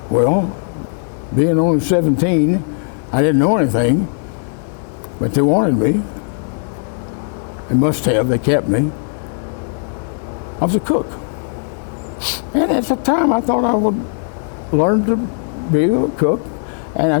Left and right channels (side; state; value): right; silent; digital silence